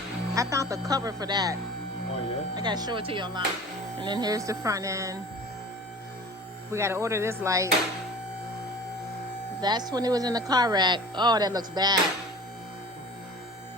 I found the cover for that. Oh, yeah? I gotta show it to you online. And then here's the front end. We gotta order this light. That's when it was in the car rack. Oh, that looks bad.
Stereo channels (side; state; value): both; normal; correlation 0.41